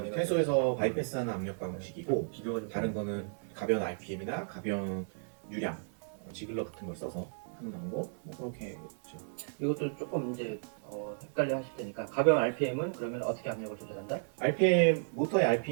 퇴소에서 바이패스하는 압력 방식이고 비교가 좀 다른 거는 가변 RPM이나 가변 유량, 지글러 같은 걸 써서 한 정도 뭐 그렇게 있죠. 이것도 조금 이제 헷갈려 하실 테니까 가벼운 RPM은 그러면 어떻게 압력을 조절한다? RPM 모터의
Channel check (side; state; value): left; silent; digital silence